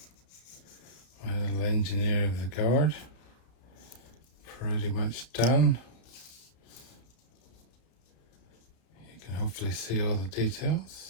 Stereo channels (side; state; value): right; late; 32 ms